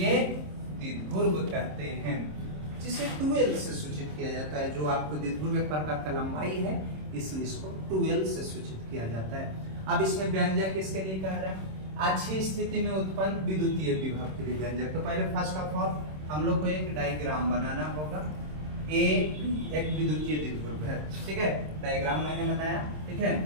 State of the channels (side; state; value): left; late; 26 ms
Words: द्विध्रुव कहते हैं, जिसे 2L से सूचित किया जाता है। जो आपको द्विध्रुव एक प्रकार का लंबाई है, इसलिए इसको 2L से सूचित किया जाता है। अब इसमें व्यंजक किसके लिए कह रहा है? अच्छी स्थिति में उत्पन्न विद्युतीय विभव के लिए व्यंजक। तो पहले फर्स्ट ऑफ ऑल हम लोग को एक डायग्राम बनाना होगा। ए एक विद्युतीय द्विध्रुव है, ठीक है, डायग्राम मैंने बनाया। ठीक है,